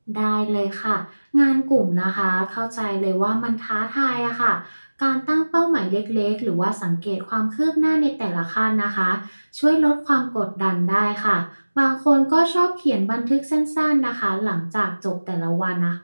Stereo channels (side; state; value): both; inverted; correlation -1.00